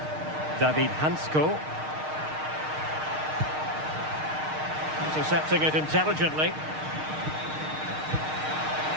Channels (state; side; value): late; left; 6.5 ms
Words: David Hansko. Intercepting it intelligently.